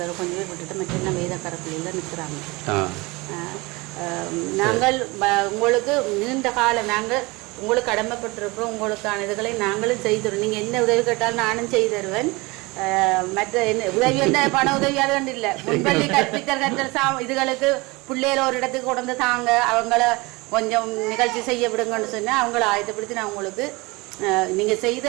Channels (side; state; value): left; quieter; 24.2 dB